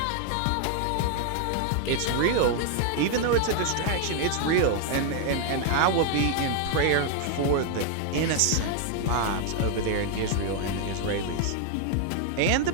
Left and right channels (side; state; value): both; different; correlation 0.00